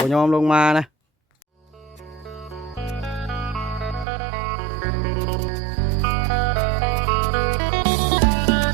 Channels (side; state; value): left; drops out; at 4.0 s